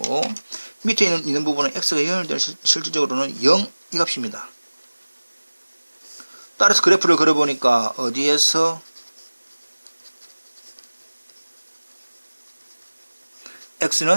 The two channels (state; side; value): inverted; both; correlation -1.00